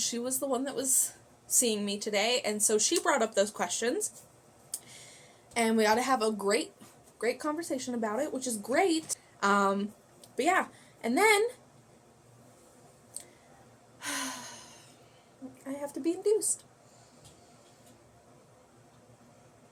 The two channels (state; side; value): identical; both; correlation 1.00